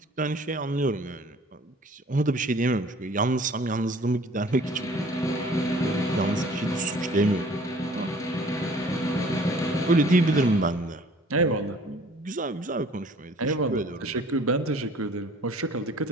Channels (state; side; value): normal; both; correlation 0.52